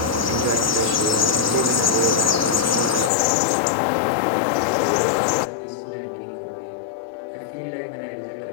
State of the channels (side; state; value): right; drops out; at 3.1 s